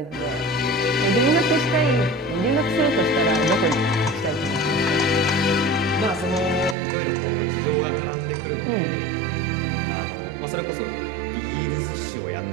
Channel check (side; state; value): left; drops out; at 6.8 s